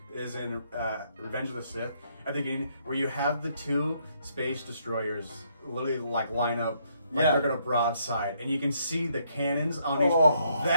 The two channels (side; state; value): both; inverted; correlation -0.71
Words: is in Revenge of the Sith, at the beginning, where you have the two space destroyers literally line up they're gonna broadside, and you can see the cannons on each.